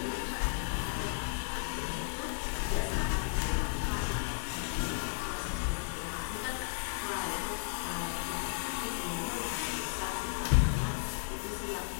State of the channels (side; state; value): right; silent; digital silence